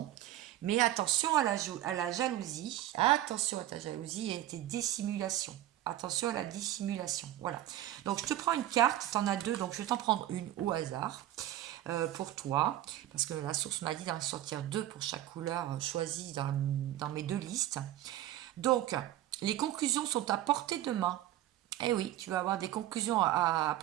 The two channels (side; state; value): left; quieter; 13.5 dB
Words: Mais attention à la jalousie. Attention à ta jalousie et à tes dissimulations. Attention à la dissimulation. Voilà. Donc, je te prends une carte. Tu en as deux. Donc, je vais t'en prendre une au hasard pour toi. Parce que la source m'a dit d'en sortir deux pour chaque couleur choisie dans mes deux listes. Donc, les conclusions sont à portée de main. Eh oui, tu vas avoir des conclusions à